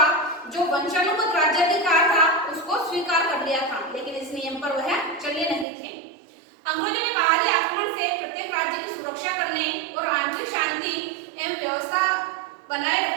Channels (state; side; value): drops out; left; at 5.7 s